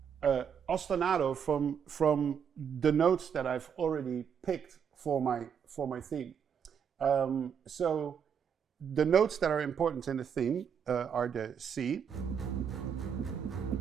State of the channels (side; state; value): left; quieter; 7.5 dB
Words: ostinato from the notes that I've already picked for my theme. So the notes that are important in the theme are the C,